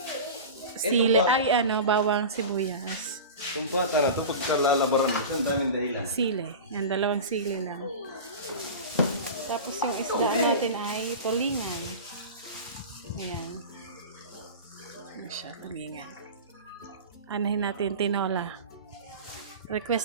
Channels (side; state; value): both; inverted; correlation -0.30